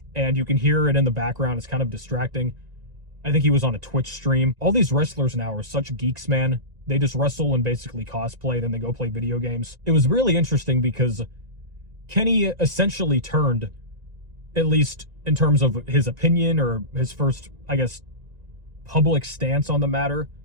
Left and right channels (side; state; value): left; late; 1.9 ms